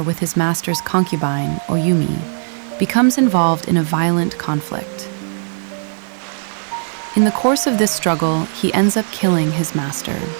with his master's concubine, Oyumi, becomes involved in a violent conflict. In the course of this struggle, he ends up killing his master.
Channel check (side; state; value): left; silent; 67 dB below the other